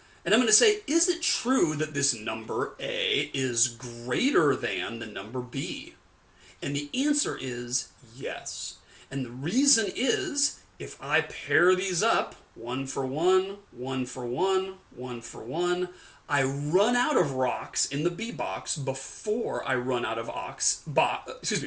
And I'm going to say, is it true that this number A is greater than the number B? And the answer is yes. And the reason is, if I pair these up, 1 for 1, 1 for 1, 1 for 1, I run out of rocks in the B box before I run out of rocks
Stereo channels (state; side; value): identical; both; correlation 1.00